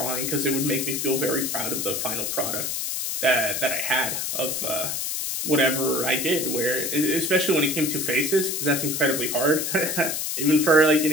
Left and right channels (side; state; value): left; noise; hiss, 2 dB below the sound